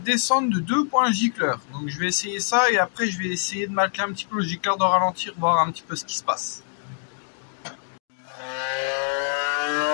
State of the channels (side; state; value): right; silent; digital silence